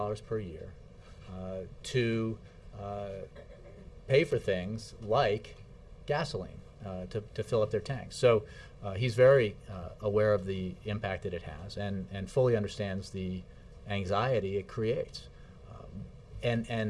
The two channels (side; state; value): both; identical; correlation 1.00